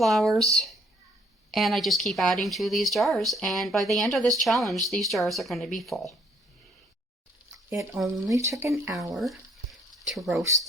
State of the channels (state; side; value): normal; both; correlation 0.64